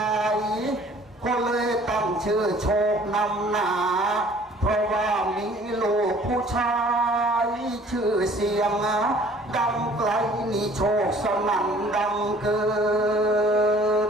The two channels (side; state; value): both; normal; correlation 0.53